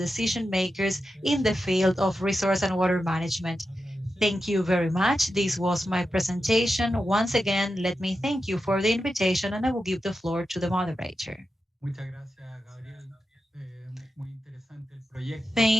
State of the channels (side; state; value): both; normal; correlation 0.90